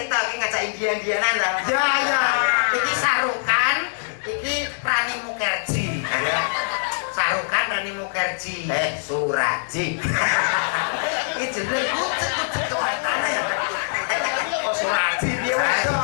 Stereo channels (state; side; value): silent; right; digital silence